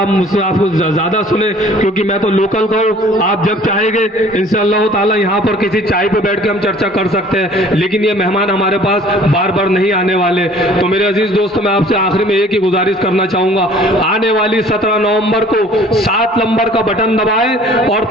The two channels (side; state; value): both; normal; correlation 0.52